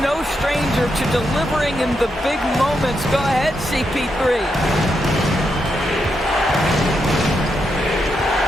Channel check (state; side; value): normal; both; correlation 0.83